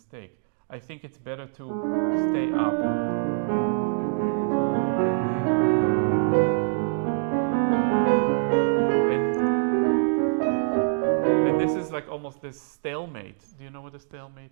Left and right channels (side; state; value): left; silent; digital silence